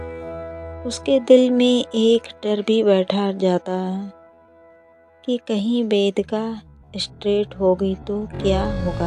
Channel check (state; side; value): identical; both; correlation 1.00